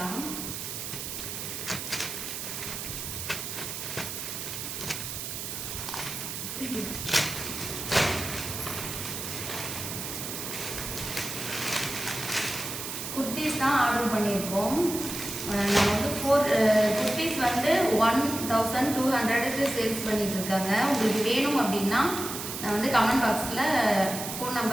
குர்த்திஸ் தான் ஆர்டர் பண்ணியிருக்கோம். நம்ம வந்து 4 குர்த்திஸ் வந்து 1200க்கு சேல்ஸ் பண்ணிட்டு இருக்காங்க. உங்களுக்கு வேணும் அப்படின்னா நான் வந்து கமெண்ட் பாக்ஸில் ஃபோன்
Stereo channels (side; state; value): right; noise; hiss, 6 dB below the sound